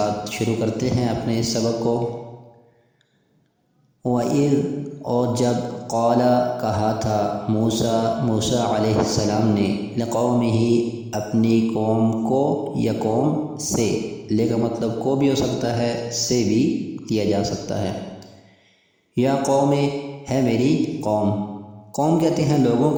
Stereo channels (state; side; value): identical; both; correlation 1.00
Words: شروع کرتے ہیں اپنے اس سبق کو۔ وَإِذْ، اور جب قال کہا تھا موسیٰ علیہ السلام نے لقومہ اپنی قوم کو، یا قوم سے، لے کا مطلب کو بھی ہو سکتا ہے، سے بھی دیا جا سکتا ہے۔ یا قوم ہے میری قوم، قوم کہتے ہیں لوگوں